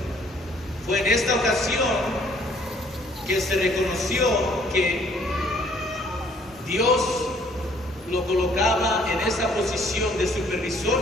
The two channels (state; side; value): normal; both; correlation 0.62